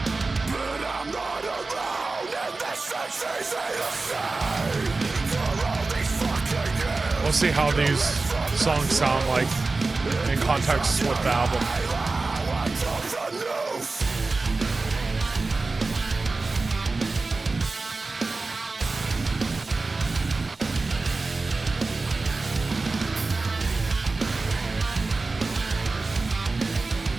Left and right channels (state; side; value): quieter; left; 3.7 dB